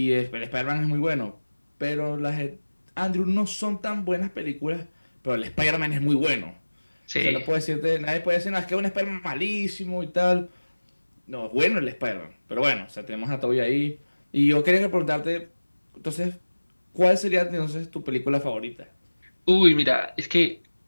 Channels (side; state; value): both; inverted; correlation -1.00